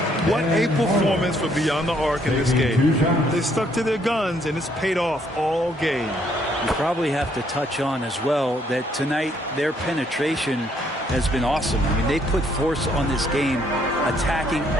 What a performance for Beyond the Arc in this game. They stuck to their guns, and it's paid off all game. You probably have to touch on as well that tonight their penetration has been awesome. I mean, they put force on this game, attacking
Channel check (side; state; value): both; normal; correlation 0.68